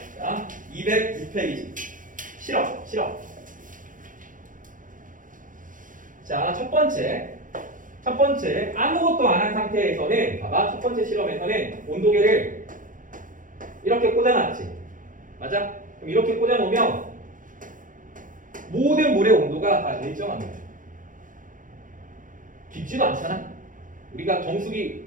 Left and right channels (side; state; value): left; late; 0.38 ms